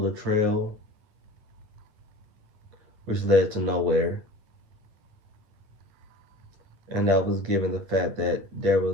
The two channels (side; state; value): left; late; 9.6 ms